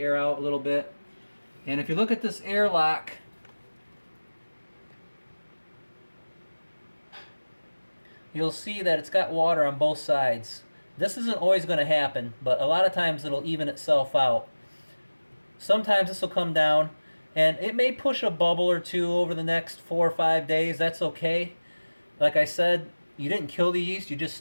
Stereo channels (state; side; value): inverted; both; correlation -1.00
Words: out a little bit. And if you look at this airlock, you'll see that it's got water on both sides. This isn't always going to happen, but a lot of times it'll even itself out. Sometimes this will come down, and it may push a bubble or two over the next 4 or 5 days. That's okay. Like I said, you didn't kill the yeast, you just